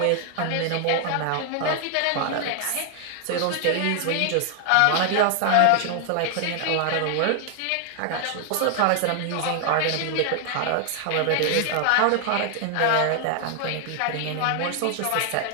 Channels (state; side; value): different; both; correlation 0.00